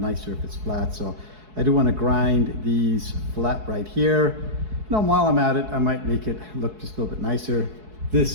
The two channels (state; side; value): late; left; 4.7 ms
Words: if it's flat. So I do want to grind these flat right here. You know, while I'm at it, I might make it look just a little bit nicer.